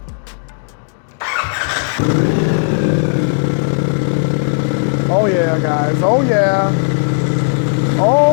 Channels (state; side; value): silent; right; digital silence